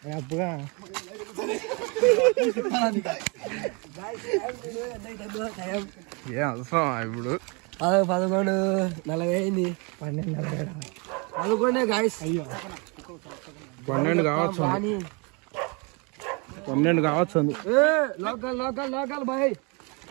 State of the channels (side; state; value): left; quieter; 31.4 dB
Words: అప్పుగా ఏ అవసరం ఇప్పుడు 11:40 అయింది. 12:40 గాయస్. అయ్యో 12 కావచ్చు, 12 కావచ్చు. లోకల్ లోకల్ లోకల్ బాయ్